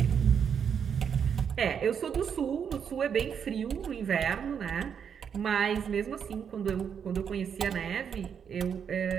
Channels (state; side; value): quieter; left; 7.5 dB